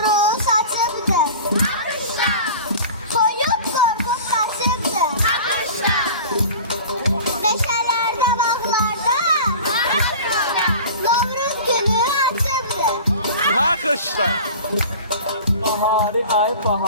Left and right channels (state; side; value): inverted; both; correlation -0.38